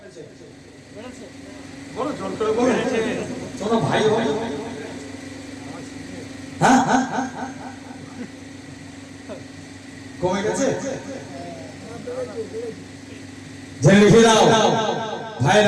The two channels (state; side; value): identical; both; correlation 1.00